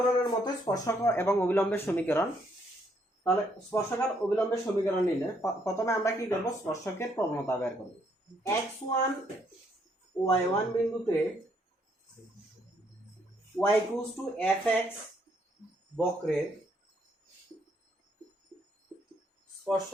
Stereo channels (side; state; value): both; normal; correlation 0.71